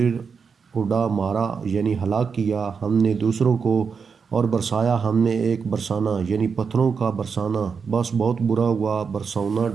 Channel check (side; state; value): left; quieter; 5.8 dB